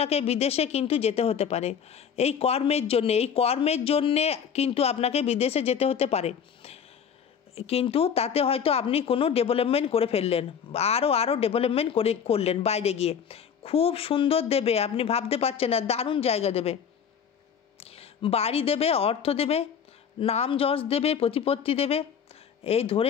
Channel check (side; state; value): right; quieter; 7.5 dB